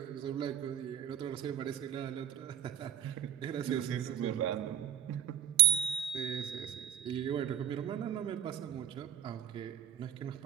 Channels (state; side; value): quieter; left; 10.5 dB